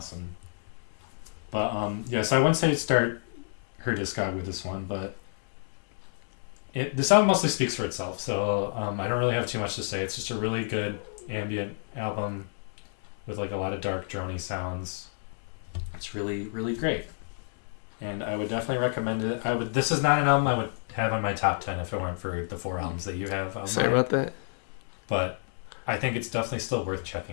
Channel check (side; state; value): right; silent; 58 dB below the other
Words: But, so I wouldn't say start her discog with this one, but this album mostly speaks for itself, so I don't really have too much to say. It's just a really good ambient album with like a lot of dark drony sounds. It's really, really great. And I would definitely recommend it. This is not an album I would have on my top 10 if it weren't for the 4 albums that you have of mine. Sorry about that. But I think it's definitely still worth